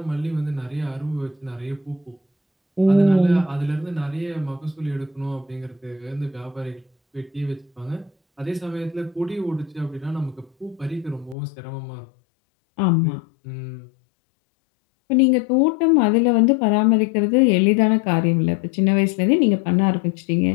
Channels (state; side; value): drops out; right; at 11.4 s